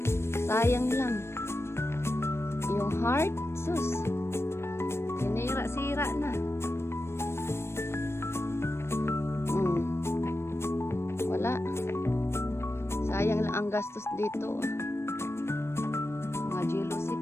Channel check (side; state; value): right; late; 0.12 ms